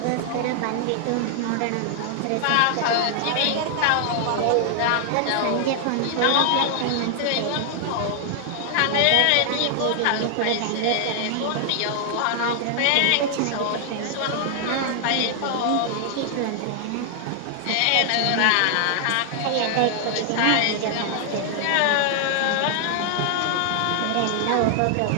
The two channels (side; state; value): both; different; correlation 0.00